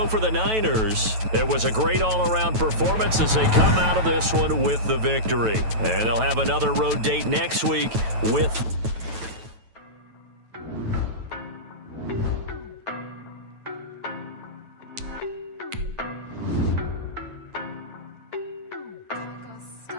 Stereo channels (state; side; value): late; left; 9.1 ms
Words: for the Niners, it was a great all-around performance as they come out of this one with the victory. And they'll have another road date next week with...